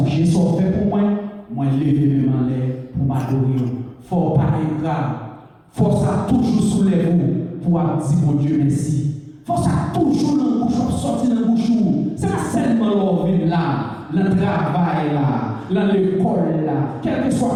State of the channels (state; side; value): identical; both; correlation 1.00